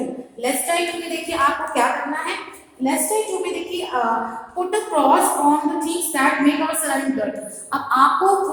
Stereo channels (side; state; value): both; identical; correlation 1.00